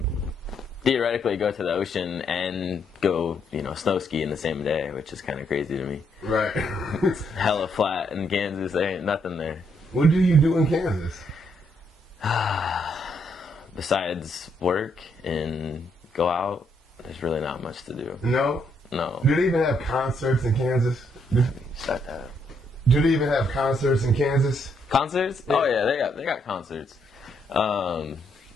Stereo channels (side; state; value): both; normal; correlation 0.74